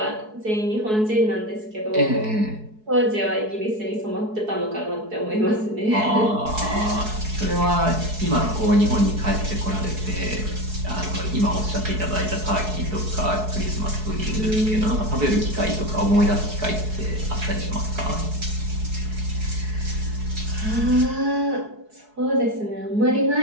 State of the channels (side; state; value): left; late; 4.7 ms